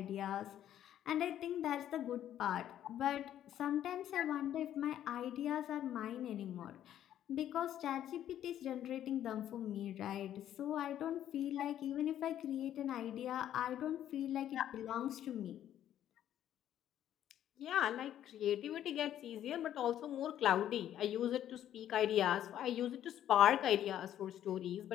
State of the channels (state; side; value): quieter; right; 11.2 dB